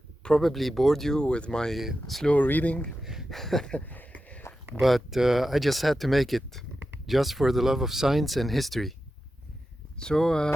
probably bored you with my slow reading, but I just had to make it, just for the love of science and history. So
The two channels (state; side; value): normal; both; correlation 0.91